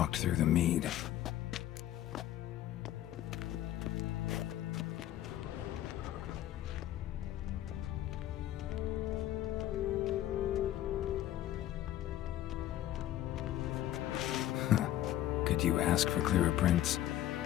through the mead. Could you ask for clearer prints?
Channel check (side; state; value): right; quieter; 13.0 dB